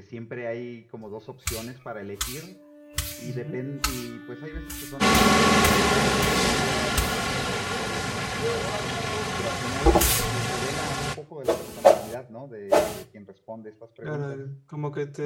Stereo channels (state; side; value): identical; both; correlation 1.00